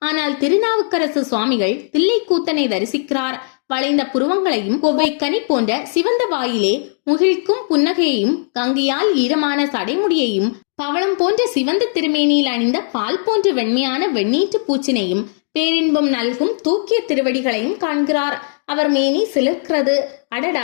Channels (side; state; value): right; silent; digital silence